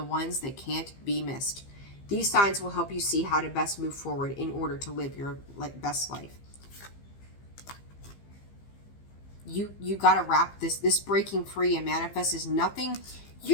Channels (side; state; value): right; late; 15 ms